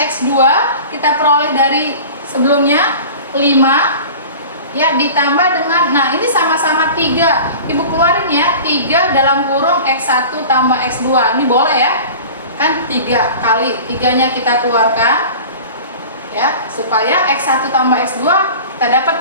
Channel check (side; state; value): both; inverted; correlation -0.38